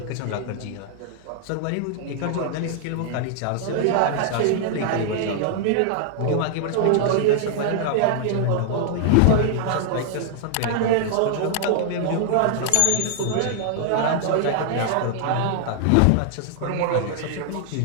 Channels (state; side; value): different; both; correlation -0.01